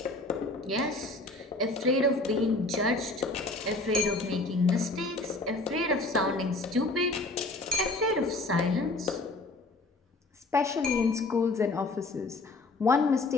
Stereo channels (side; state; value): right; quieter; 3.0 dB